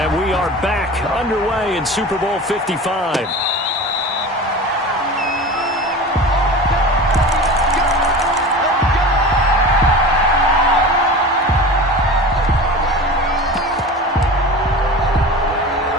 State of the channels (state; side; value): normal; both; correlation 0.34